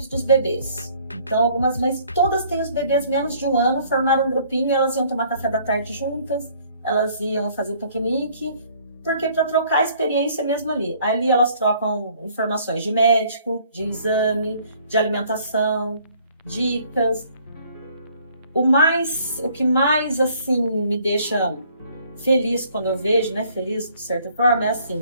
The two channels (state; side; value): inverted; both; correlation -0.60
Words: dos bebês. Então, algumas mães, todas têm os bebês menos de 1 ano, formaram um grupinho, elas iam tomar café da tarde juntas, elas iam fazer piquenique, porque para trocar a experiência mesmo ali. Ali elas trocam informações de médico, de exame, de alimentação, dicas. O que mais, assim, me deixa feliz quando eu vejo, né, feliz de certa forma, é